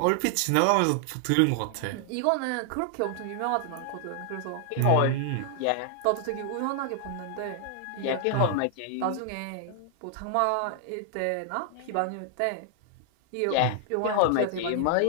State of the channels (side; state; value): both; different; correlation 0.00